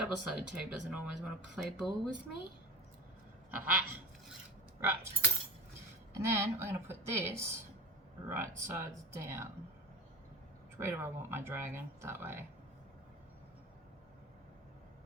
tape doesn't always want to play ball with me. Aha! Right. And then we're going to put this right sides down. Which way do I want my dragon? That way.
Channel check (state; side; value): normal; both; correlation 0.32